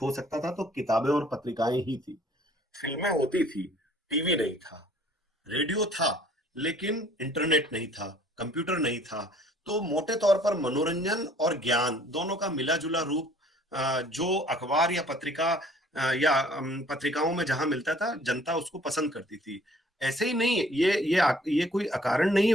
हो सकता था तो किताबें और पत्रिकाएं ही थी। फिल्में होती थी, टीवी नहीं था, रेडियो था, लेकिन इंटरनेट नहीं था, कंप्यूटर नहीं था। तो मोटे तौर पर मनोरंजन और ज्ञान दोनों का मिला जुला रूप जो अखबार या पत्रिकाओं में जहां मिलता था, जनता उसको पसंद करती थी। ऐसे ही नहीं, ये कोई अकारण नहीं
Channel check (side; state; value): both; normal; correlation 0.56